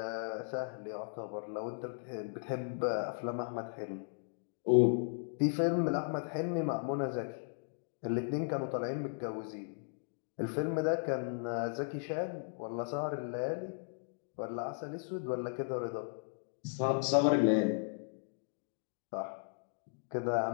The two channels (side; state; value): right; silent; digital silence